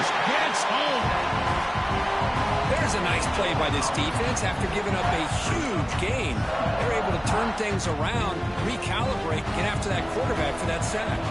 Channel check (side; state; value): both; identical; correlation 1.00